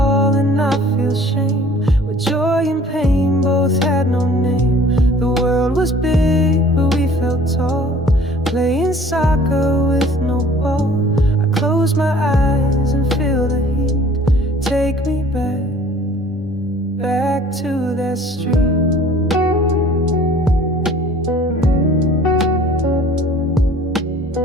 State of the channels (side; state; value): both; normal; correlation 0.51